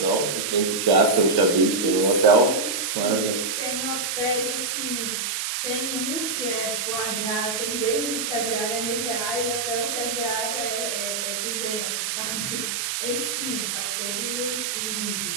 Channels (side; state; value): right; noise; hiss, 1 dB below the sound